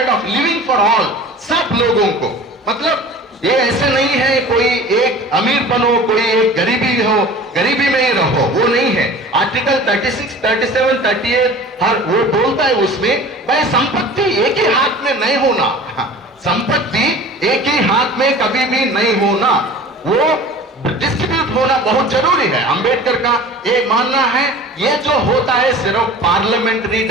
of living for all, सब लोगों को, मतलब ये ऐसे नहीं है कोई एक अमीर बनो कोई एक गरीबी हो, गरीबी में ही रहो, वो नहीं है। आर्टिकल 36, 37, 38 हर वो बोलता है उसमें भाई संपत्ति एक ही हाथ में नहीं होना, संपत्ति एक ही हाथ में कभी भी नहीं होना, वो डिस्ट्रीब्यूट होना बहुत जरूरी है। अंबेडकर का ये मानना है ये जो होता है सिर्फ पार्लियामेंट्री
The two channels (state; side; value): normal; both; correlation 0.41